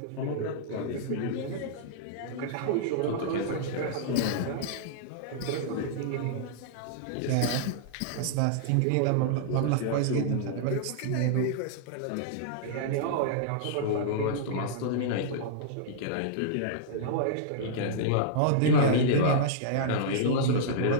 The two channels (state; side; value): different; both; correlation -0.02